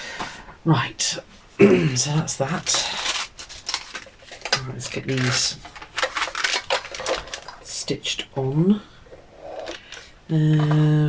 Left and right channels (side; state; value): both; identical; correlation 1.00